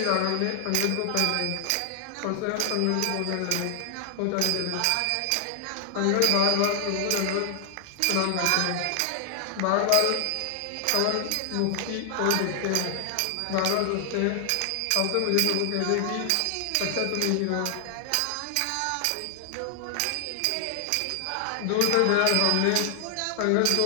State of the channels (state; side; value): different; both; correlation 0.00